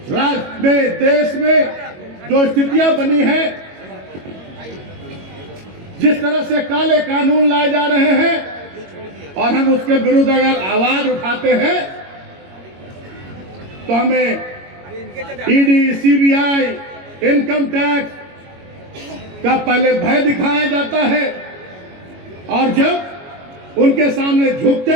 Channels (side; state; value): left; late; 22 ms